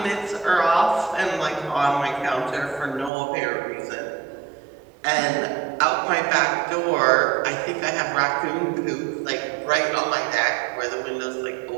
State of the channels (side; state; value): left; drops out; at 3.1 s